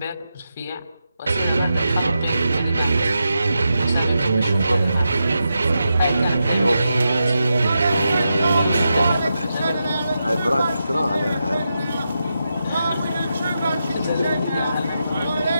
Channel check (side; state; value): both; inverted; correlation -0.87